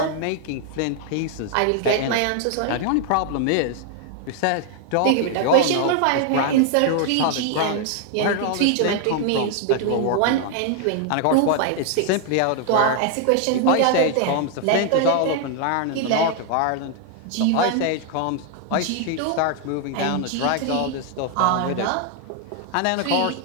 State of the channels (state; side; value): different; both; correlation 0.00